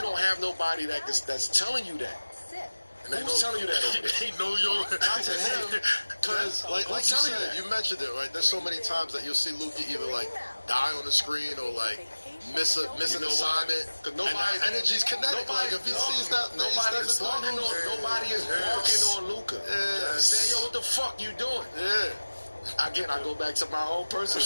don't have nobody that's telling you that. Who's telling you that over there? He know your... Not to him, because, like you said, you mentioned it, right? There's so many times that you'll see Luka either, like, die on the screen or, like, miss an assignment. Because nobody's energy's kinetic. Like, if he sees that, nobody is barking on Luka. Saying, yo, what the fuck you doing? Again, I go back to my own personal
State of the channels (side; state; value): both; inverted; correlation -1.00